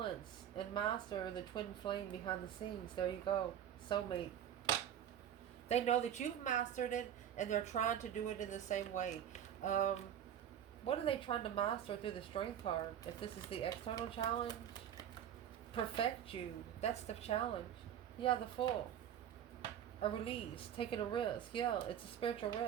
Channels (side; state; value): left; quieter; 9.8 dB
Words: and master the twin flame behind the scenes. There you go. Soulmate. They know that you've mastered it, and they're trying to do it in the same way. What are they trying to master through the strength card? If this is the external challenge, perfect you. That's the challenge. Yeah, the Fool. A release, taking a risk. Yeah, it's a spiritual